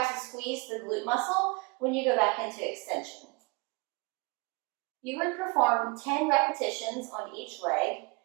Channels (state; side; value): quieter; left; 29.3 dB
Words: to squeeze the glute muscle when you go back into extension. You would perform 10 repetitions on each leg